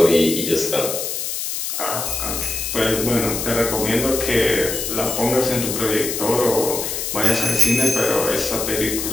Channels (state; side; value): noise; left; hiss, 3 dB below the sound